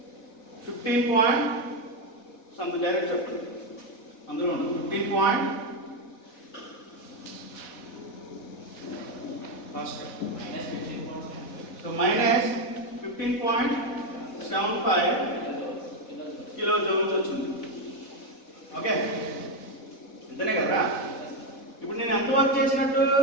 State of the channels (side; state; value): right; late; 4.1 ms